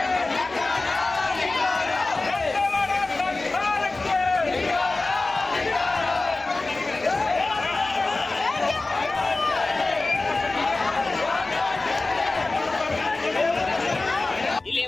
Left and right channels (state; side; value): quieter; right; 3.3 dB